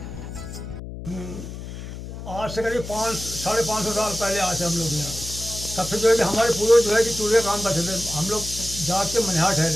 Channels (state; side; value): noise; left; hum, 10 dB below the sound